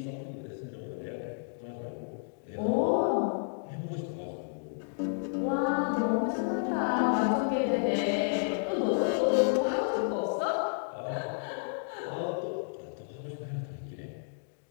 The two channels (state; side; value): silent; right; digital silence